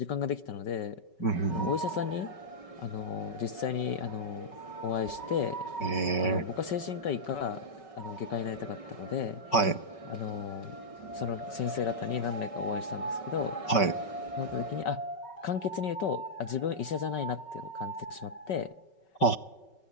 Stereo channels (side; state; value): right; late; 5.3 ms